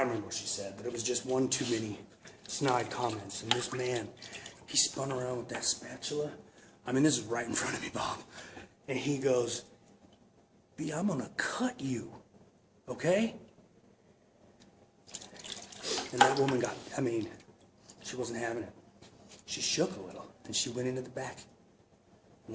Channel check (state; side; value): identical; both; correlation 1.00